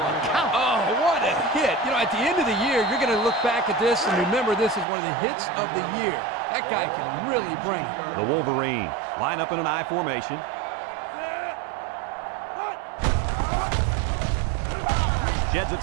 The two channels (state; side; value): drops out; left; at 4.9 s